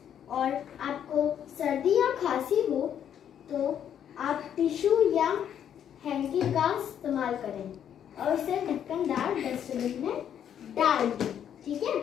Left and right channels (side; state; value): right; quieter; 9.3 dB